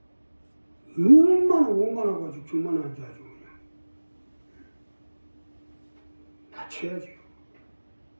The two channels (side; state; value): both; inverted; correlation -1.00